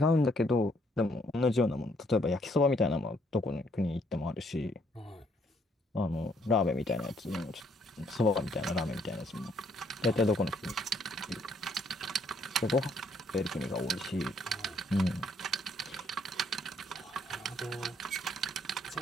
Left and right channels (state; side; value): normal; both; correlation 0.68